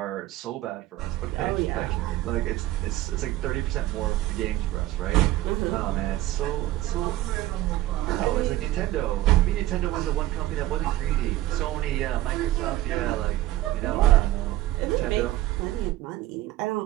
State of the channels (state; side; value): quieter; left; 15.6 dB